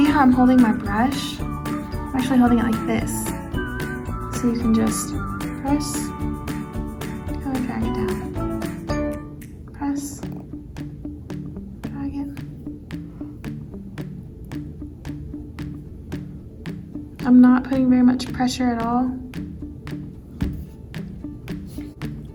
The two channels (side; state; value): both; identical; correlation 1.00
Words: how I'm holding my brush. I'm actually holding it like this. So you can just press, kind of drag it down. Press, drag it. I'm not putting very much pressure at all.